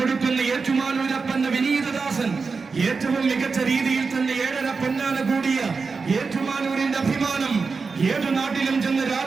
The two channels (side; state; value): left; quieter; 4.7 dB